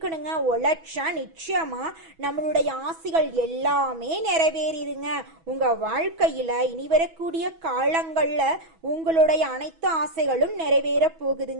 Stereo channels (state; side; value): late; left; 6.1 ms